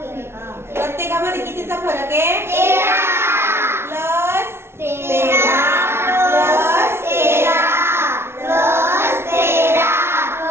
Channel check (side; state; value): left; late; 0.12 ms